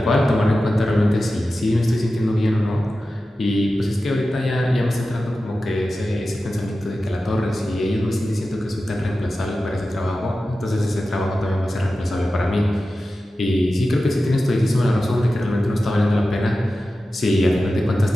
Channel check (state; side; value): normal; both; correlation 0.93